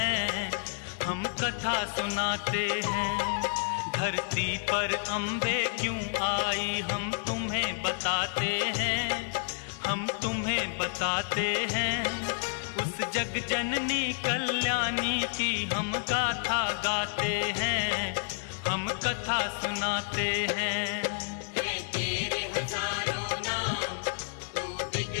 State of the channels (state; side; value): silent; right; 58 dB below the other